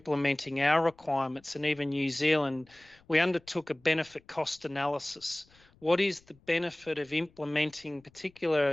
our requirements, and even New Zealand, we undertook a benefit cost analysis. What is the benefit of implementing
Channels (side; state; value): left; noise; rumble, 30 dB below the sound